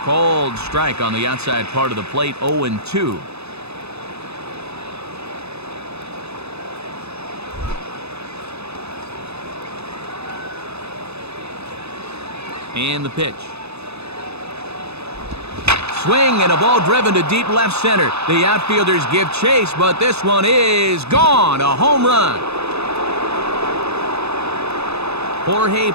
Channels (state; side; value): late; left; 0.79 ms